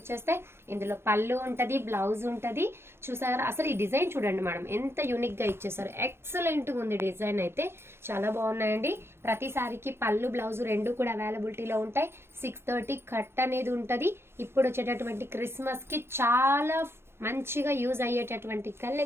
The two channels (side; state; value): left; late; 0.12 ms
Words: ఇందులో పళ్ళు ఉంటది, బ్లౌజ్ ఉంటది. చూసారా అసలు ఈ డిజైన్ చూడండి మేడం, ఎంత యూనిక్ గా ఇచ్చేసారు. ఎక్సలెంట్ గా ఉంది డిజైన్ అయితే, చాలా బాగున్నాయండి. ప్రతి సారీకి పళ్ళు బ్లౌజ్ రెండు కూడా అవైలబిలిటీలో ఉంటాయి. 630 కట్ అనేది ఉంటది. ఇప్పుడు వచ్చేటటువంటి క్రిస్మస్ కి చాలా మంచిగా యూజ్ అయ్యేటటువంటి